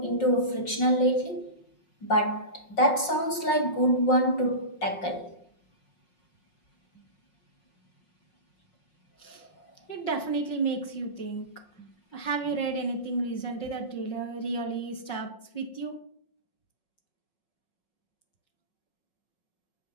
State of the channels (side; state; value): right; late; 5.5 ms